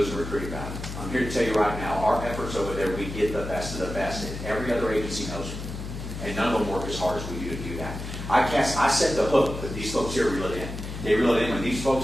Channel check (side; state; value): left; noise; hum, 8 dB below the sound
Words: a recruiting battle. I'm here to tell you right now, our efforts over there, we get the best of the best, and every other agency knows it. And none of them work as hard as we do to do that. I set the hook that these folks here reel it in. They reel it in when these